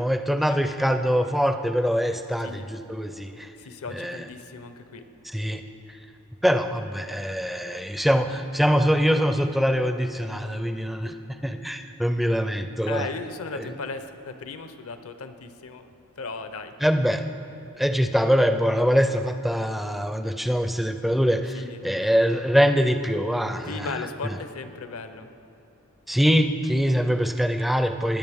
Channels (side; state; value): both; normal; correlation 0.91